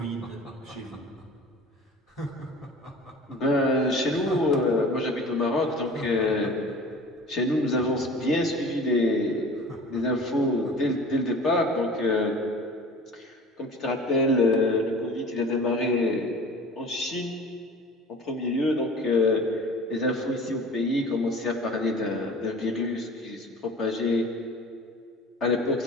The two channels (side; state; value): both; normal; correlation 0.42